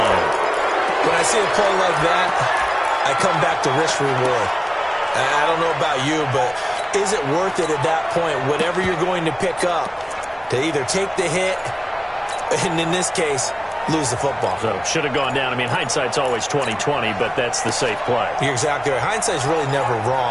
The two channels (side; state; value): both; identical; correlation 1.00